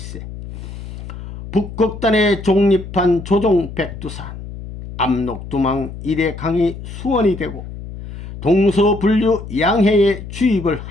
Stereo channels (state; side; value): noise; left; hum, 11 dB below the sound